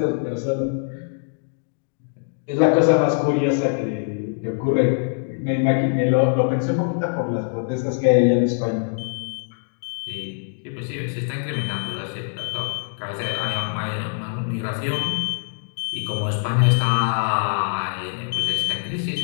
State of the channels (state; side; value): silent; right; digital silence